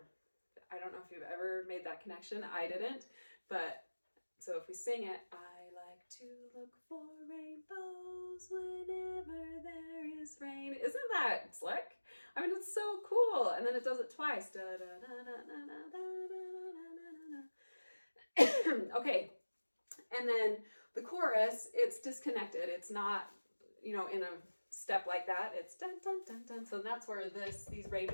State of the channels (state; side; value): inverted; both; correlation -1.00